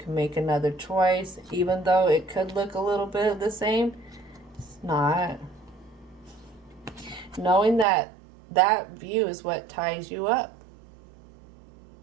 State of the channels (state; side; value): drops out; left; at 7.9 s